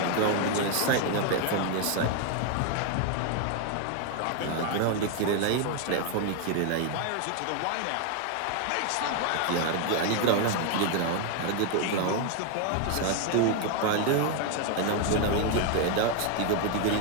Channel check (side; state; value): both; different; correlation 0.01